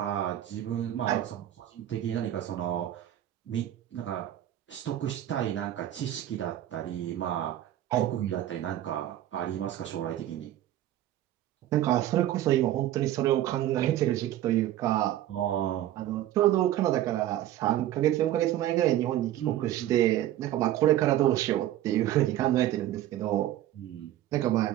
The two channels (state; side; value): quieter; left; 13.0 dB